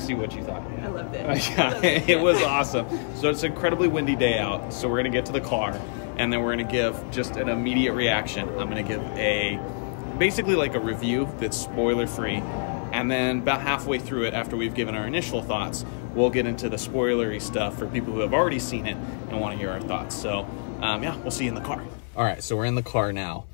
you what you thought yet. I loved it. Yeah, it was awesome. So it's an incredibly windy day out, so we're going to get to the car, and then we're going to give just an immediate reaction. I'm going to give basically like a review that's spoiler-free, and then about halfway through it, after we've given our initial thoughts, we'll get into the spoilery stuff for people who have already seen it and want to hear our thoughts. So, yeah, we'll see you in the car. All right, so we're in the car now.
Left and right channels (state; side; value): silent; right; 56 dB below the other